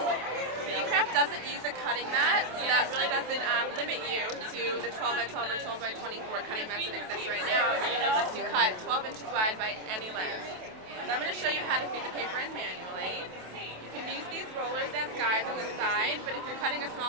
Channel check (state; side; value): late; left; 27 ms